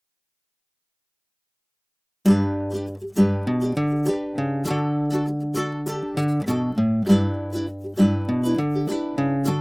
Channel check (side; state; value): both; identical; correlation 1.00